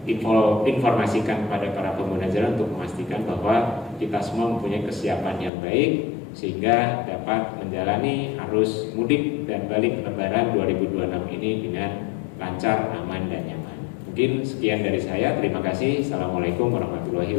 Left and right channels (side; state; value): right; drops out; at 5.5 s